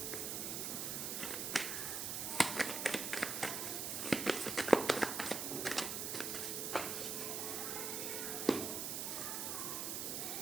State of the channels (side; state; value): right; noise; hiss, 2 dB below the sound